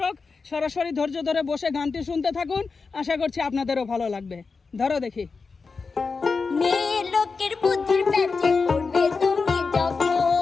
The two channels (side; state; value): right; quieter; 4.6 dB